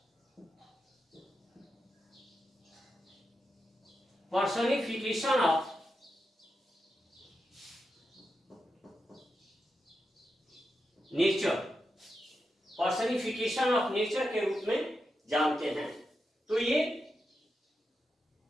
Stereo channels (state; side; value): normal; both; correlation 0.87